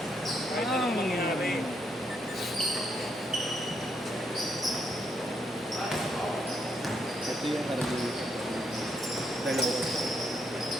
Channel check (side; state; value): both; normal; correlation 0.76